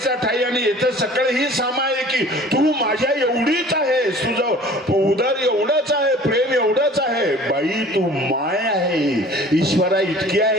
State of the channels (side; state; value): both; normal; correlation 0.47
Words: ठाई आणि येतं सकळ ही सामाय की. तू माझ्या एवढीच आहेस, तुझं उदर एवढंच आहे, प्रेम एवढंच आहे. बाई तू माय आहे, ईश्वरा इतकी